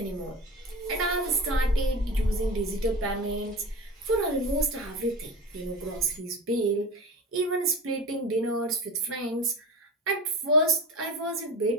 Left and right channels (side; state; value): both; normal; correlation 0.30